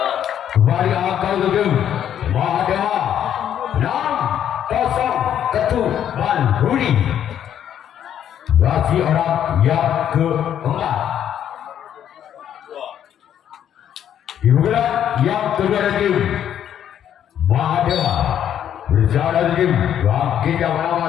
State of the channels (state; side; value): quieter; right; 9.9 dB